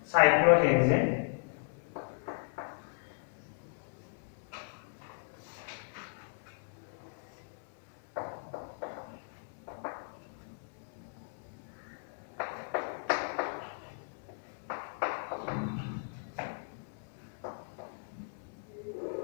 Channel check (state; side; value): silent; right; digital silence